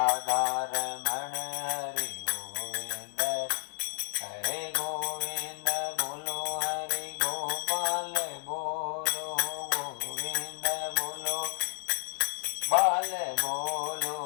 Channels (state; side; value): silent; right; 57 dB below the other